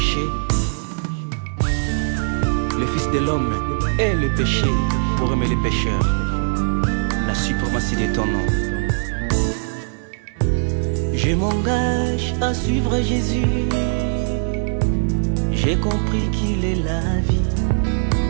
le Fils de l'homme est le péché pour aimer les pécheurs. La suprématie de ton nom. Je m'engage à suivre Jésus. J'ai compris qu'il est la vie.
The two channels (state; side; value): silent; left; digital silence